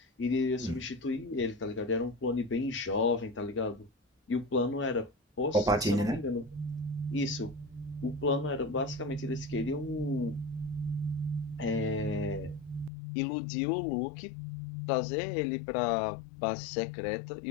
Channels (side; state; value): right; drops out; at 12.9 s